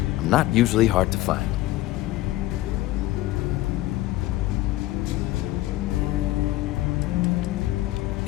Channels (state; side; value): quieter; right; 16.7 dB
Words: I'm not usually hard to find.